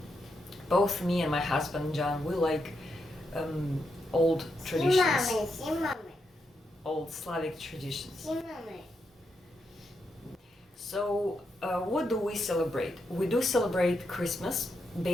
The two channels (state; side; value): normal; both; correlation 0.83